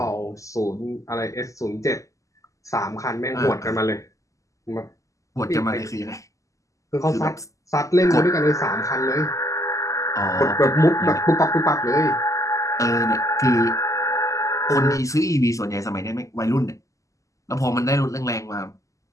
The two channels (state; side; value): late; right; 0.16 ms